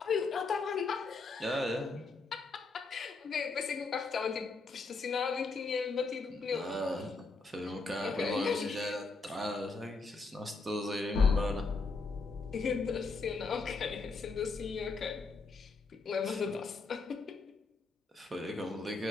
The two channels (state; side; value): quieter; right; 4.0 dB